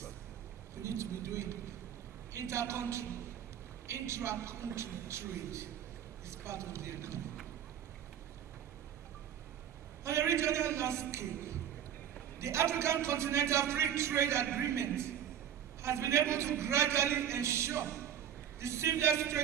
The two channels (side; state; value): left; quieter; 9.8 dB